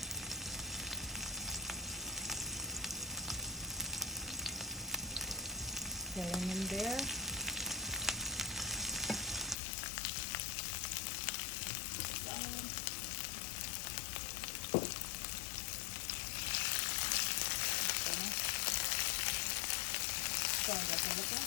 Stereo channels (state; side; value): drops out; right; at 9.6 s